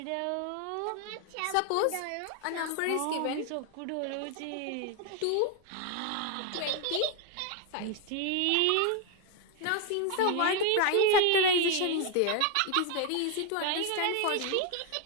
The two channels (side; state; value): both; different; correlation 0.01